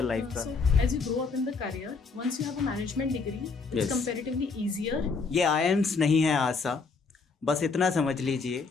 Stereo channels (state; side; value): quieter; right; 4.6 dB